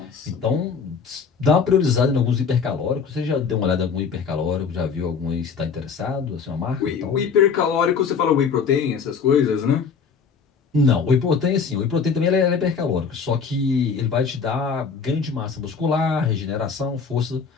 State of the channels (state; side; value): quieter; right; 5.8 dB